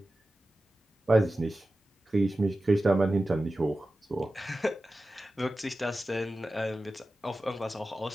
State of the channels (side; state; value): both; normal; correlation 0.94